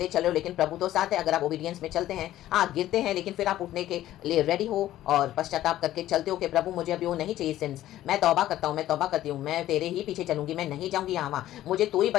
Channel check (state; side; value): quieter; right; 13.7 dB